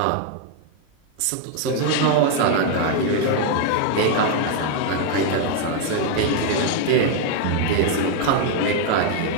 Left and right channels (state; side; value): different; both; correlation 0.01